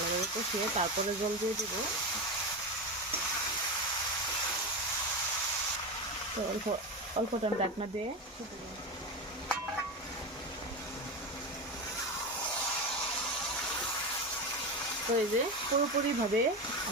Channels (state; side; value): normal; both; correlation 0.19